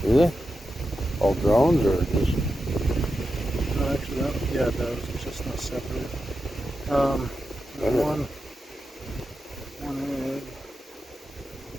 Do they? All drones or just? No, actually, yeah, it does. It's just not separate. There's one egg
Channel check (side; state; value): both; normal; correlation 0.89